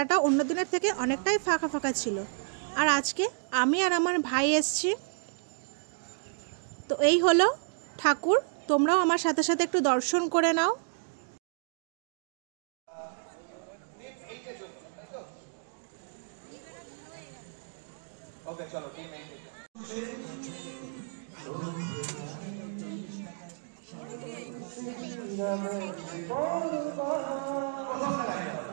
অন্য দিনের থেকে অনেকটাই ফাঁকা ফাঁকা ছিল, আর আজকে আমি আর আমার ভাই এসেছি। তো এই হলো ঠাকুর, তোমরাও আমার সাথে সাথে একটু দর্শন করে নাও।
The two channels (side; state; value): left; silent; digital silence